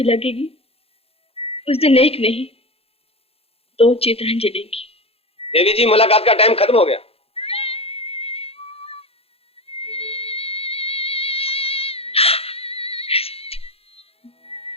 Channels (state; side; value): late; right; 0.28 ms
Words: लगेगी उस दिन एक नहीं 2 चिताएं जलेंगी। देवी जी, मुलाकात का टाइम खत्म हो गया।